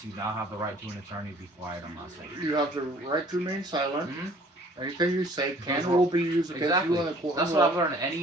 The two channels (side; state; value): both; normal; correlation 0.54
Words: You now have the right to an attorney. Be quiet. I'm not saying. you have the right to remain silent. Anything you say can Because or will be used against Exactly. you in the court. That's of what law. I've learned.